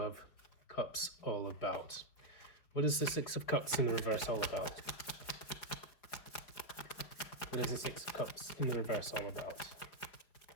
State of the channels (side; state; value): right; late; 4.8 ms